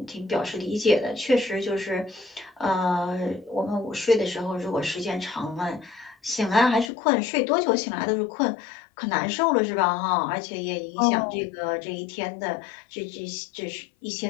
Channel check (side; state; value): right; drops out; at 6.9 s